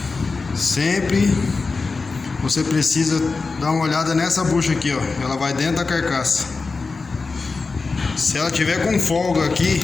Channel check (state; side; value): quieter; right; 4.2 dB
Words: Sempre você precisa dar uma olhada nessa bucha aqui, ó. Ela vai dentro da carcaça. Se ela tiver com folga